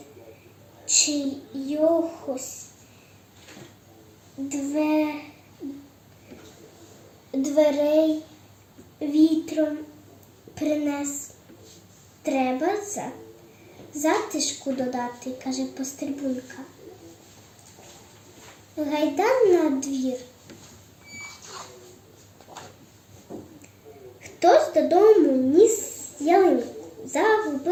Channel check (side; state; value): both; identical; correlation 1.00